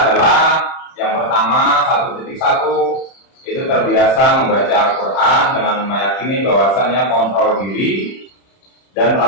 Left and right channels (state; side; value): late; right; 31 ms